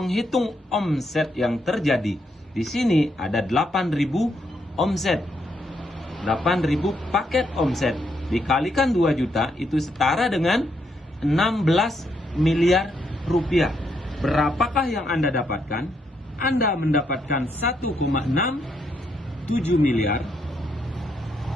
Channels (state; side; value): normal; both; correlation 0.77